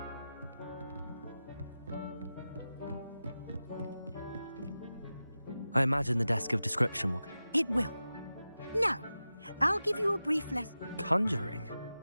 I imagine the desk of description will... It will. Now, I'll give you a brief lesson. Conjuring?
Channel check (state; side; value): inverted; both; correlation -0.94